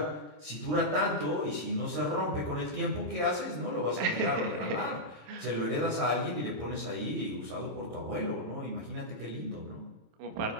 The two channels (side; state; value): left; late; 27 ms